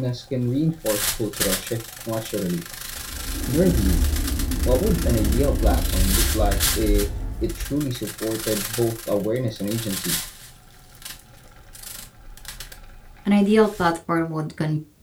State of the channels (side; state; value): both; identical; correlation 1.00